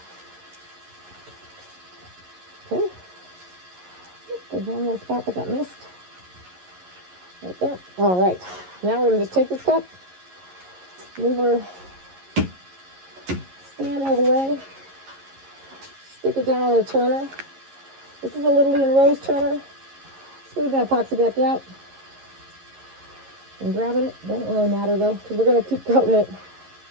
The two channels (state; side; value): late; left; 11 ms